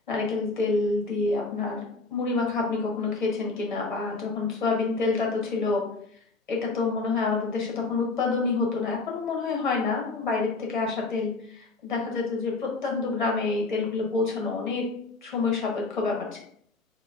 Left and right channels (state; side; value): quieter; right; 3.6 dB